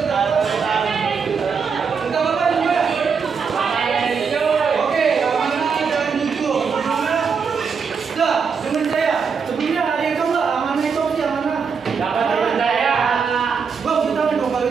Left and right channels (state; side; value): quieter; left; 5.9 dB